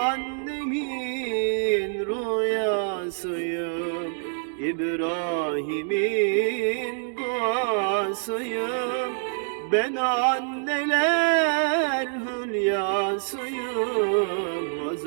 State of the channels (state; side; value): silent; left; digital silence